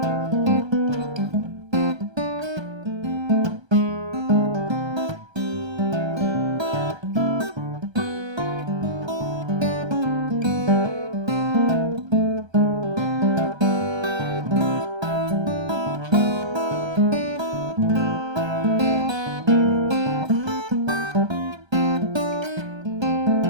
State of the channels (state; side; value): late; left; 1.3 ms